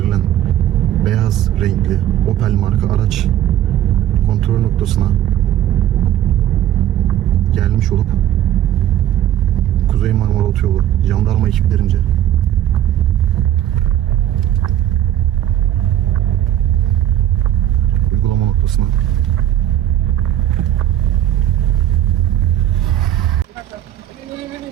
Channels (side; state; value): left; quieter; 12.2 dB